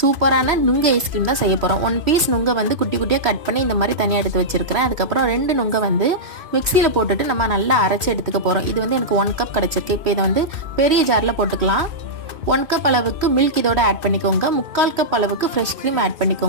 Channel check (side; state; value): left; late; 2.5 ms